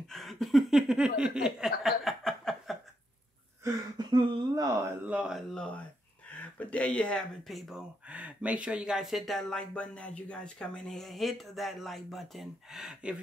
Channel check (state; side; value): normal; both; correlation 0.80